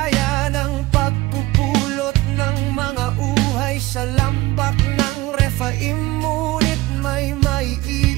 ng pagpupulot ng mga uhay sa lambak ng Rephaim. Ngunit may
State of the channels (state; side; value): quieter; left; 19.4 dB